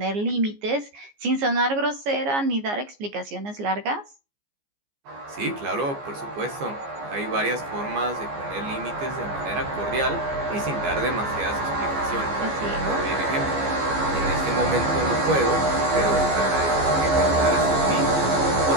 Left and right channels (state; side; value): late; left; 14 ms